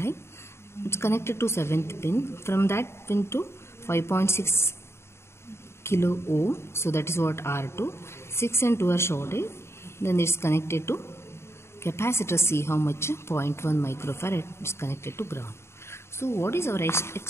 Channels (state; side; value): late; right; 0.13 ms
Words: It's connected to 7th pin. From that pin to 5.6 kilo ohm. So that is what? R2. 6 and 2 are shorted. Then it's connected to capacitor C, how much? 0.1 microfarad is connected to ground. So what is our